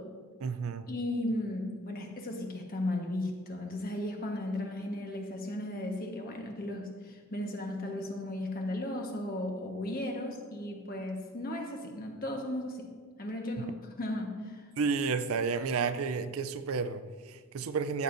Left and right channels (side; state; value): both; normal; correlation 0.40